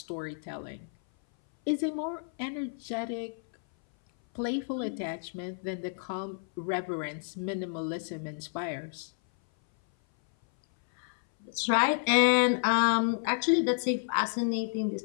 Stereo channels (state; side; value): silent; right; 57 dB below the other